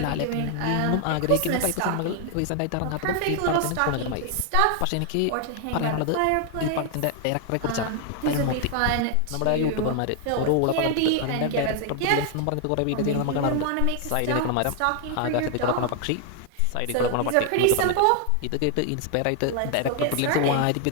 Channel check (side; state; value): both; different; correlation 0.00